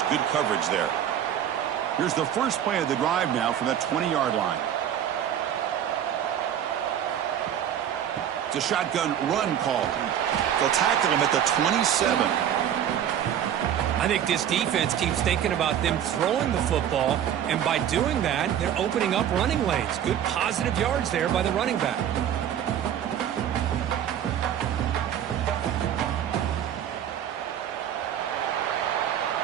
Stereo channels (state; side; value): quieter; left; 9.9 dB